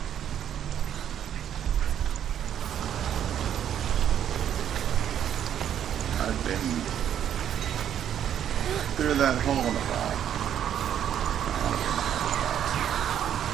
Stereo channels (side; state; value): left; quieter; 9.8 dB